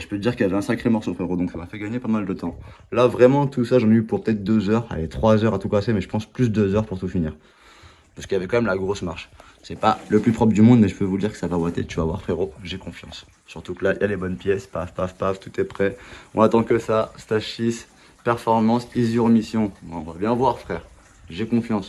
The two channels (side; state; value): both; identical; correlation 1.00